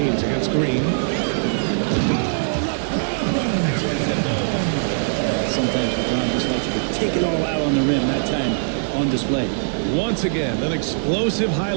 against Green. Sometimes LeBron just likes to take it all out on the rim, that time on display. Once again, an explosive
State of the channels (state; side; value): silent; left; digital silence